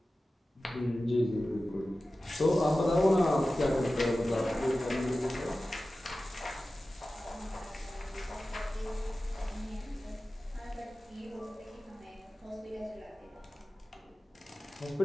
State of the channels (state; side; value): normal; both; correlation 0.95